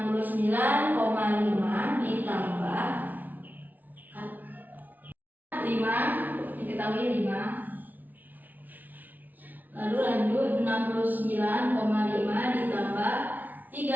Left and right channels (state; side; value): late; left; 0.082 ms